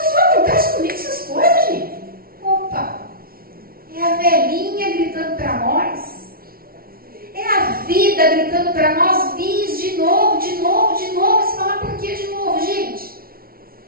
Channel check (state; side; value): late; left; 0.43 ms